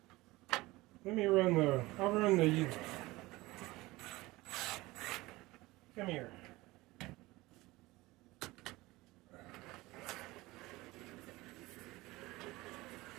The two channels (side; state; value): left; quieter; 20.3 dB